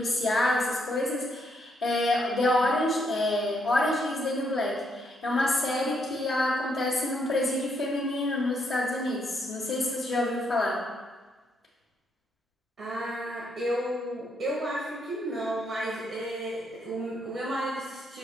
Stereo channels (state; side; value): normal; both; correlation 0.75